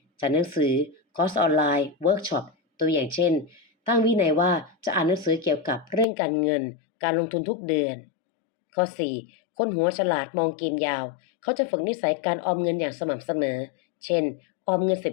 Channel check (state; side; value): drops out; right; at 6.1 s